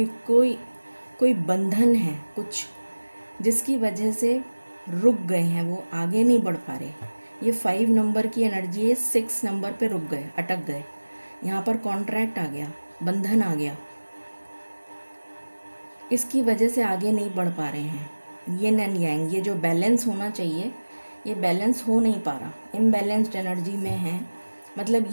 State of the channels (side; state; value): both; inverted; correlation -1.00